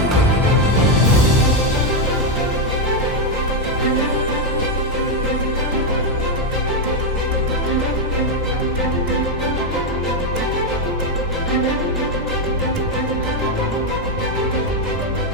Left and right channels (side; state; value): both; normal; correlation 0.04